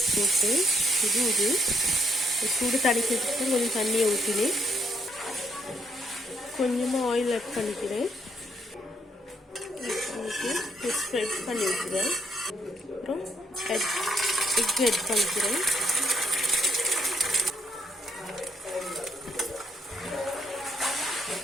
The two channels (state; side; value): normal; both; correlation 0.72